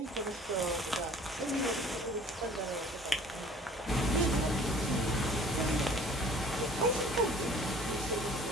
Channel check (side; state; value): both; normal; correlation 0.51